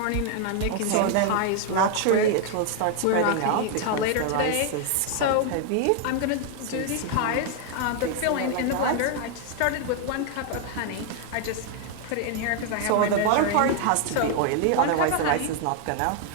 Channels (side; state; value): both; different; correlation 0.00